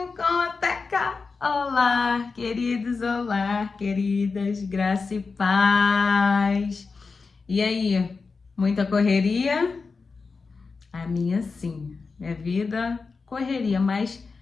com Teca. Olá, queridos, olá, queridas, graça e paz. E aí, muita correria? A minha sim, minha vida correria, mas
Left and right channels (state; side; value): quieter; right; 4.5 dB